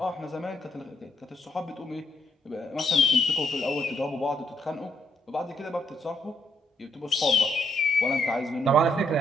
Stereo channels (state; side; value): normal; both; correlation 0.75